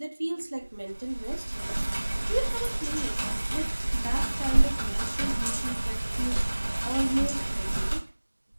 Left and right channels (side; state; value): both; inverted; correlation -1.00